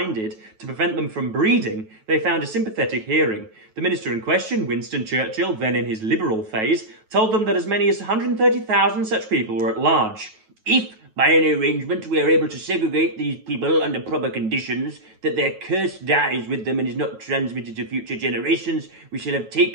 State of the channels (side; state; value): left; late; 9.3 ms